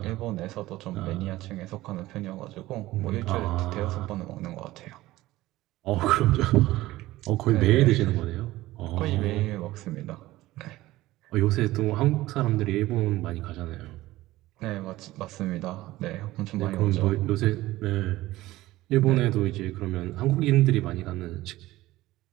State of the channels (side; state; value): left; quieter; 17.1 dB